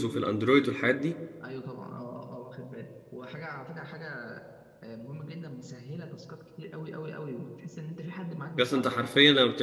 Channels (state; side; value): identical; both; correlation 1.00